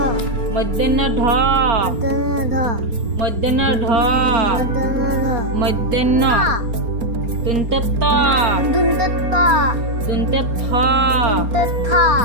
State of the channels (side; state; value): left; late; 4.3 ms